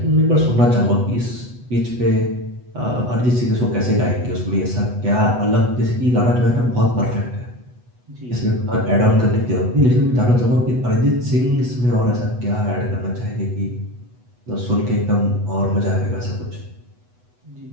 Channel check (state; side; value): late; left; 8.1 ms